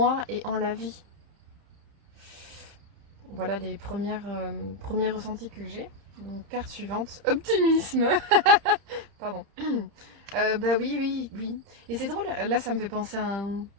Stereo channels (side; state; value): left; late; 30 ms